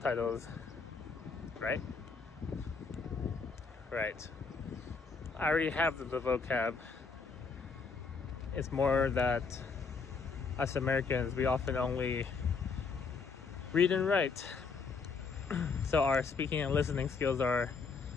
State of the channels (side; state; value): right; quieter; 4.9 dB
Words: right? Right. I already have the vocab. It's more that us Americans, we often only read and write. So our speaking and listening skills are,